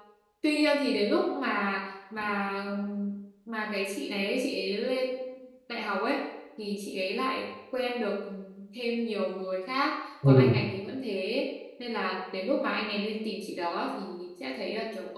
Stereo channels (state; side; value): identical; both; correlation 1.00